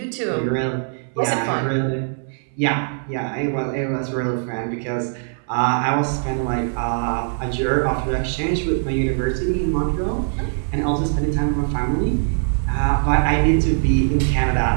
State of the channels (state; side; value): silent; left; 60 dB below the other